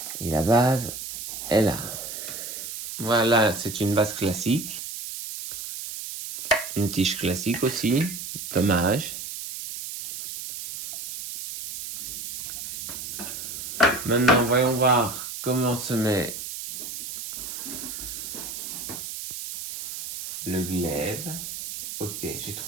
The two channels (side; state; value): right; noise; hiss, 8 dB below the sound